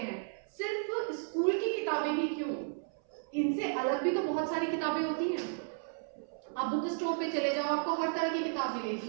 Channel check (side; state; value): left; silent; 55 dB below the other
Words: सिर्फ स्कूल की किताबें ही क्यों, इनसे अलग भी तो बहुत सारी किताबें होती हैं। आप बुक स्टोर पे चले जाओ, आपको हर तरह की किताब मिलेगी,